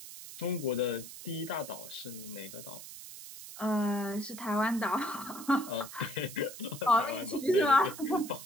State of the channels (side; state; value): right; noise; hiss, 13 dB below the sound